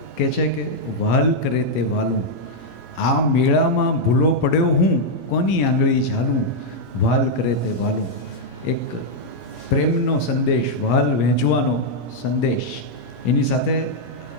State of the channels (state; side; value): normal; both; correlation -0.03